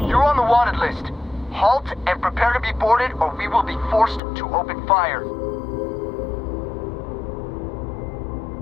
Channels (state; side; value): drops out; right; at 4.2 s